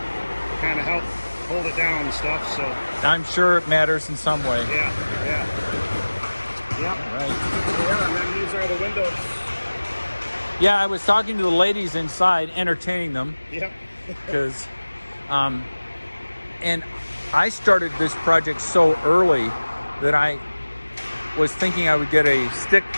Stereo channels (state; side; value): inverted; both; correlation -1.00